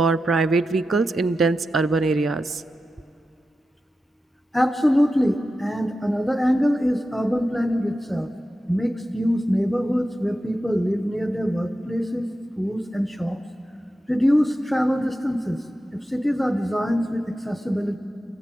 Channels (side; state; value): both; normal; correlation 0.91